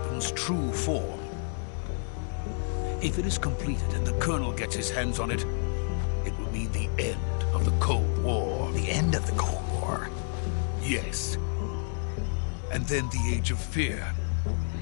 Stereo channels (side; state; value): right; silent; 58 dB below the other